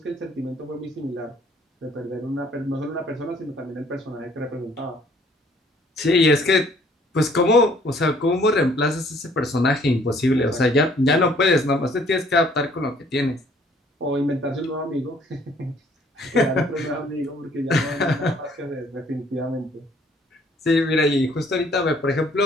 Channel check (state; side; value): normal; both; correlation 0.60